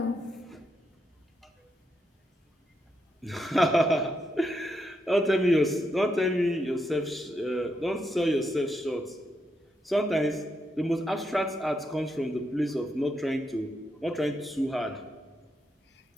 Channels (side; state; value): both; normal; correlation 0.81